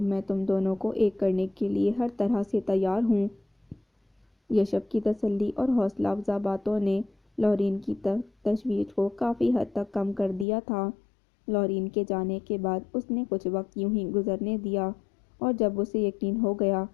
تم دونوں کو ایک کرنے کے لیے ہر طرح سے تیار ہوں۔ یشب کی تسلی اور حوصلہ افزا باتوں نے لورین کی تشویش کو کافی حد تک کم کر دیا تھا۔ لورین کے جانے کے بعد اس نے کچھ وقت یوں ہی گزرنے دیا اور جب اسے یقین ہو گیا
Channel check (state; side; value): drops out; right; at 10.5 s